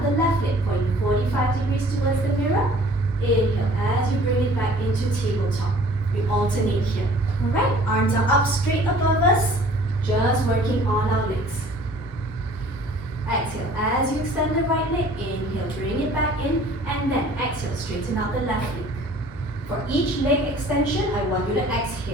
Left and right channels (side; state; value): both; normal; correlation 0.51